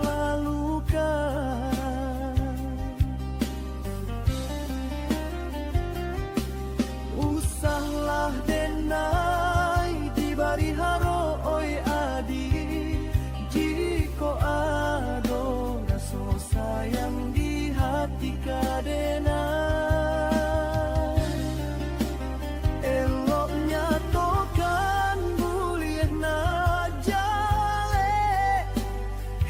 Usahlah denai di bari haro oi adi, jiko ado raso sayang di hati kadena. Eloknya tokan bulian na jale,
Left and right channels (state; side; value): identical; both; correlation 1.00